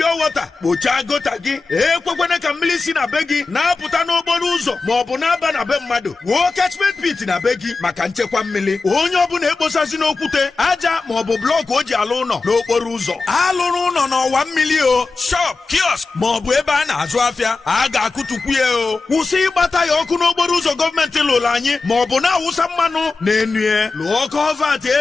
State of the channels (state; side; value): quieter; right; 4.0 dB